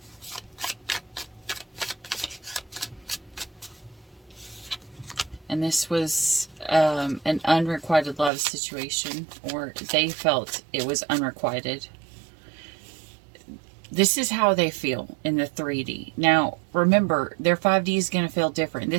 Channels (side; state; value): left; drops out; at 8.3 s